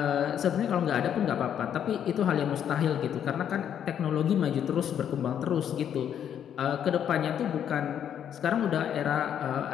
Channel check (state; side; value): quieter; right; 9.2 dB